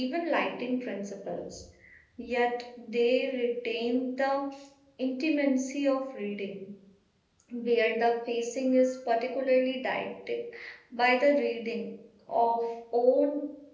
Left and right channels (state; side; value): identical; both; correlation 1.00